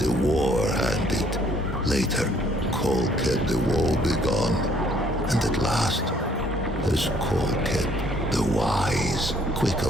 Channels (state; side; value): normal; both; correlation 0.63